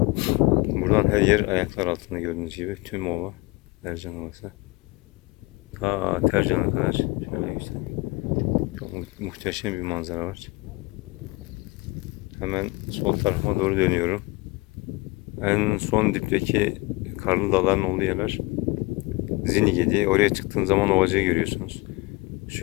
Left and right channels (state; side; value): quieter; right; 23.4 dB